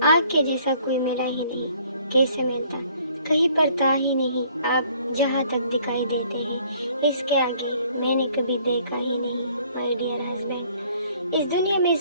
آگ کے جیسا کوئی ملا ہی نہیں، کیسے ملتا؟ کہیں پر تھا ہی نہیں۔ آپ جہاں تک دکھائی دیتے ہیں اس کے آگے میں نے کبھی دیکھا ہی نہیں۔ مائی ڈیئر ہسبینڈ، اس دنیا میں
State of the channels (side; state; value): both; inverted; correlation -0.59